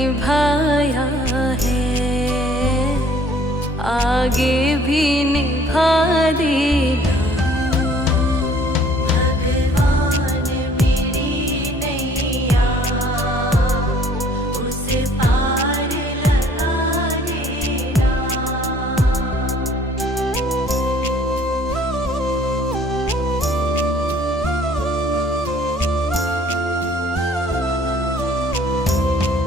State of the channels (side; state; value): both; normal; correlation 0.57